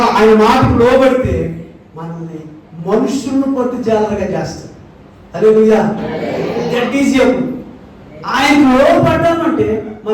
ఆయన మాటకు లోబడితే మనల్ని మనుషులను పట్టు జాలరుగా చేస్తాడు. హల్లెలూయా. దట్ ఈజ్ ఎప్పుడు ఆయన లోపడ్డామంటే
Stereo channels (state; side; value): identical; both; correlation 1.00